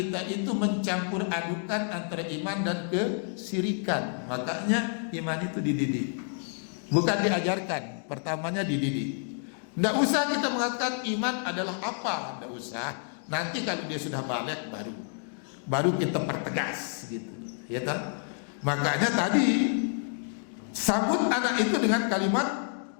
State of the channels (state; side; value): silent; right; 55 dB below the other